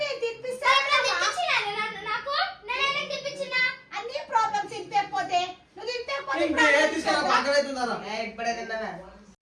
తినిపిస్తా. నాకు నేనే తినిపించిన అన్ని ప్రాబ్లమ్స్ తినిపోతే నువ్వు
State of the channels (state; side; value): identical; both; correlation 1.00